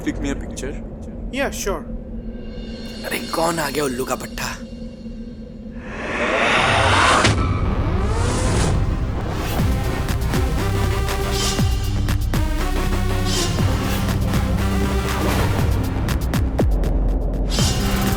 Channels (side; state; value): both; identical; correlation 1.00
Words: click me a picture? Yeah, sure. अरे कौन आ गया उल्लू का पट्टा?